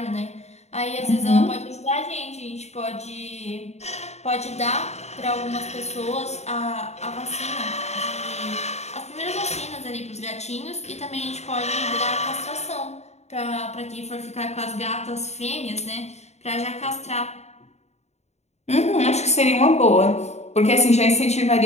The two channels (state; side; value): late; right; 0.32 ms